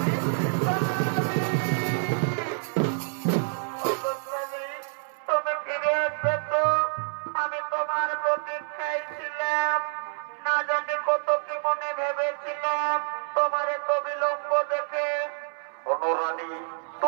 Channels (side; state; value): left; silent; 60 dB below the other